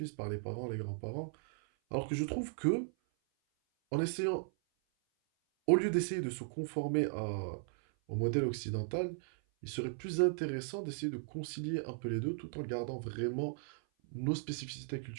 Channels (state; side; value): silent; left; 53 dB below the other